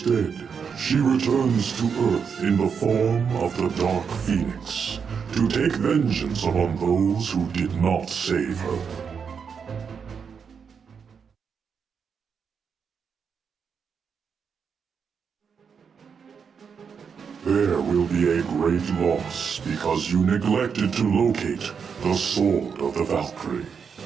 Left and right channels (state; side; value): quieter; left; 6.4 dB